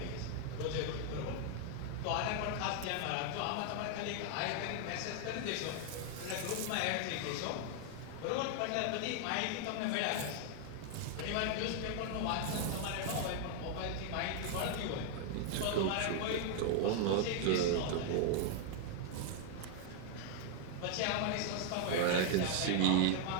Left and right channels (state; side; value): different; both; correlation 0.00